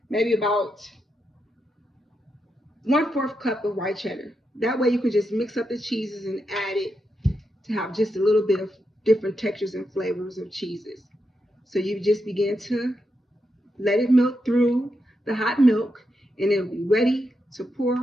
maybe about 1/4 cup of white cheddar. That way you can just mix up the cheeses and add it to have just a little bit of different textures and flavors of cheeses. So you just begin to let it melt through the hot milk, and it'll be ready to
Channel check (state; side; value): normal; both; correlation 0.85